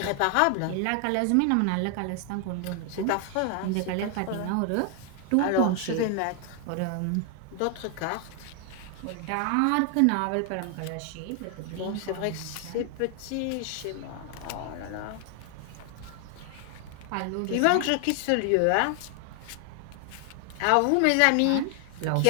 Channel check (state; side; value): different; both; correlation 0.00